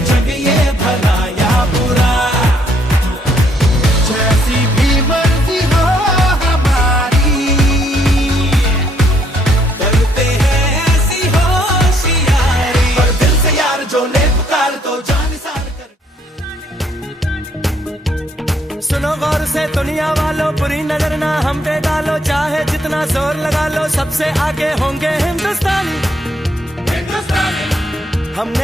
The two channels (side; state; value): both; normal; correlation 0.68